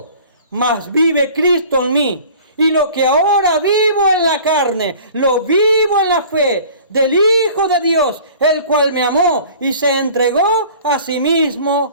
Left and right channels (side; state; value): both; inverted; correlation -0.46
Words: mas vive Cristo en mí. Y lo que ahora vivo en la carne, lo vivo en la fe del Hijo de Dios, el cual me amó y se entregó a sí